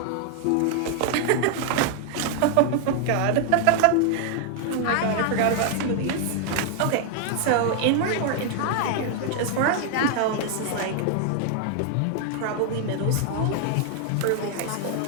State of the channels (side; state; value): both; different; correlation 0.00